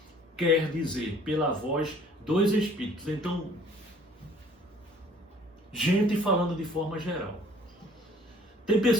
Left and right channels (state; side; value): normal; both; correlation 0.55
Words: quer dizer, pela voz dos Espíritos. Então, gente falando de forma geral. Tem